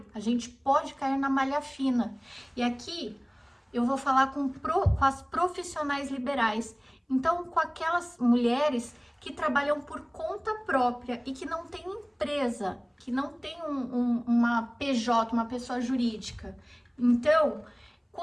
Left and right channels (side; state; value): both; identical; correlation 1.00